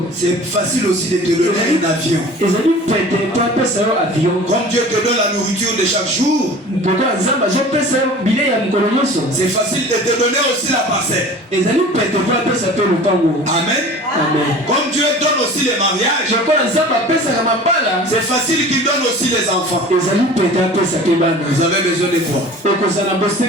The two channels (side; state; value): both; normal; correlation 0.42